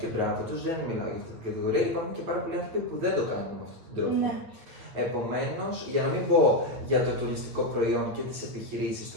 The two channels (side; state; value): left; late; 9.2 ms